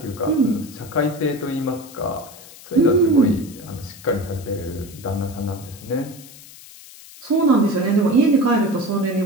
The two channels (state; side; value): noise; left; hiss, 19 dB below the sound